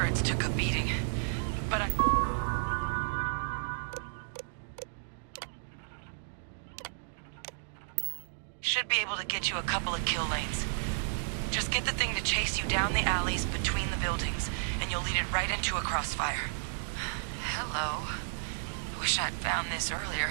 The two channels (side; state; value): left; silent; digital silence